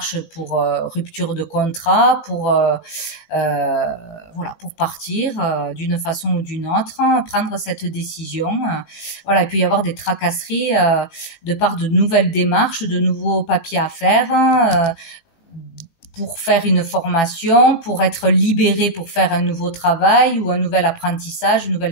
pour rupture de contrat, voilà, pour partir d'une façon ou d'une autre, prendre cette décision. Voilà, il peut y avoir des tracasseries de part de nouvelles démarches, de nouveaux papiers à faire. Pour faire une formation, pour être libéré pour faire un nouveau travail ou un nouvel apprentissage, une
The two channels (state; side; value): late; right; 19 ms